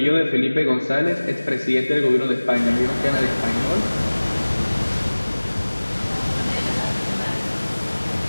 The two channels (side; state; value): both; inverted; correlation -1.00